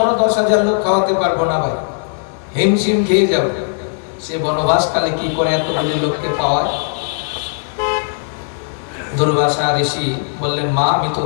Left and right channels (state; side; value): silent; right; 63 dB below the other